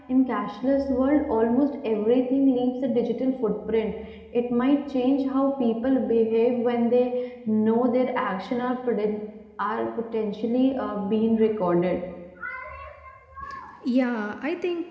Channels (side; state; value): both; identical; correlation 1.00